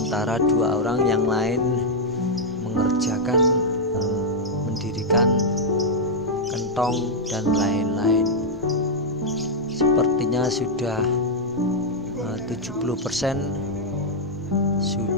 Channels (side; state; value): both; normal; correlation -0.03